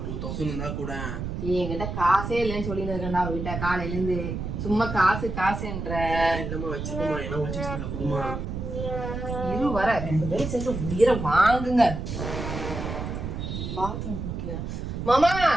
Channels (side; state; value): right; noise; rumble, 5 dB below the sound